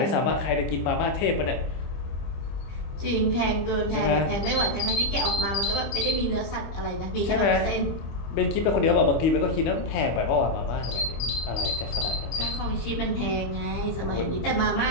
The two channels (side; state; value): right; late; 25 ms